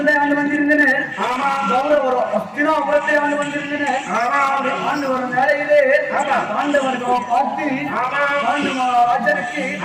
ஆண்டு வந்திருந்தனர், கௌரவர் அஸ்தினாபுரத்தை ஆண்டு வந்திருந்தனர். ஆண்டு வரும் வேலையிலே பாண்டவர்கள் பார்த்து ராஜனுக்கு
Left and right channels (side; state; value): both; identical; correlation 1.00